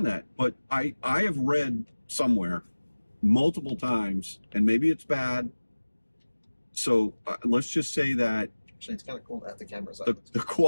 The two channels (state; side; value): inverted; both; correlation -1.00